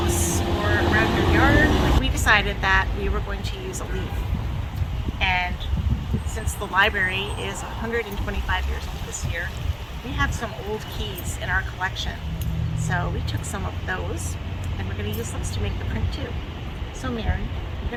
or around your yard. We decided that we were going to use a leaf. And since the library is 125 years old this year, we have some old keys in our collection. So we took some of those and we're going to use those to make the print too. So Mary, you're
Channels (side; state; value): both; identical; correlation 1.00